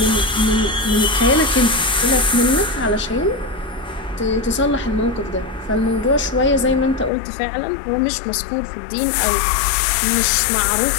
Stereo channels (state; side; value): drops out; right; at 7.1 s